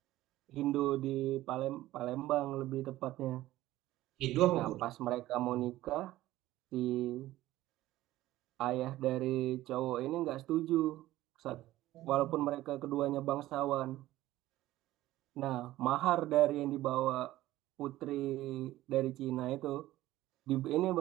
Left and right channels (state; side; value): quieter; left; 15.7 dB